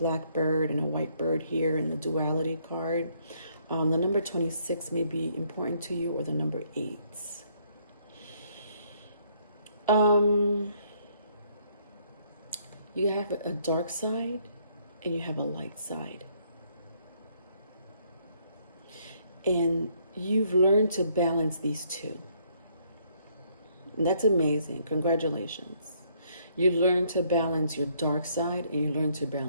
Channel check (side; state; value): both; inverted; correlation -0.68